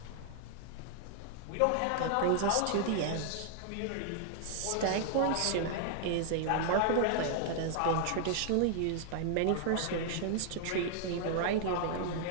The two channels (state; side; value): different; both; correlation 0.00